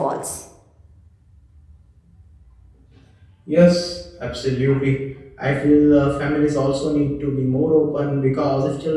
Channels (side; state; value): both; identical; correlation 1.00